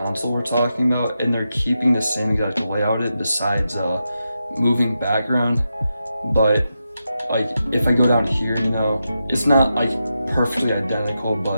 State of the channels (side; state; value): both; inverted; correlation -0.88